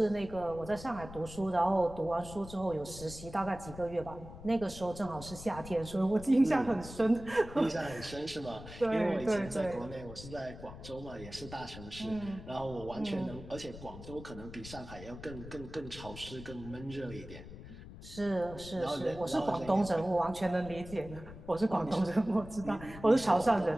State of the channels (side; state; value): left; noise; rumble, 14 dB below the sound